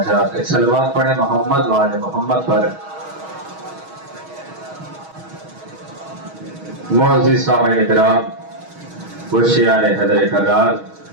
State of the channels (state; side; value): late; left; 6.3 ms